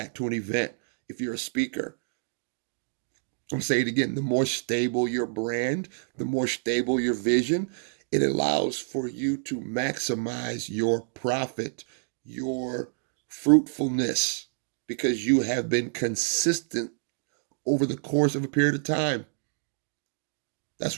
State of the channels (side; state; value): left; silent; digital silence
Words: to an event if you're a speaker. I'm going to say it again. The more stable your brand, the more stable your vision, it allows for you to maximize your profit, your fruitfulness, because you have been consistent over the course of a period of time.